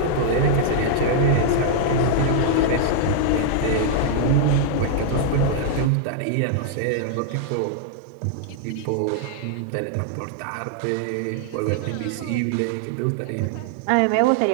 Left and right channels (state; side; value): different; both; correlation -0.01